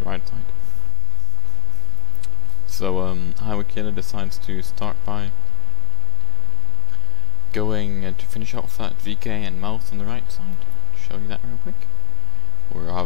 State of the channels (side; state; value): both; normal; correlation 0.87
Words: right side. So Highway Killer decides to start by going to finish off that VK and Mouse on the right side. Show you that real quick. We're